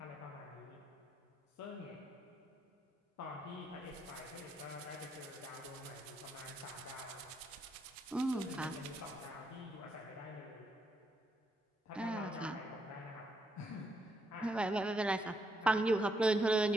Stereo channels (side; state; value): both; normal; correlation 0.77